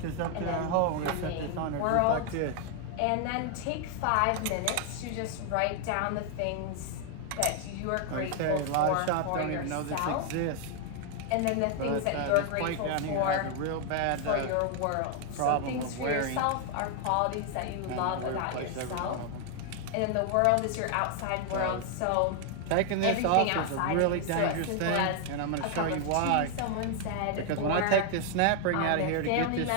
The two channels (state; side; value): different; both; correlation 0.00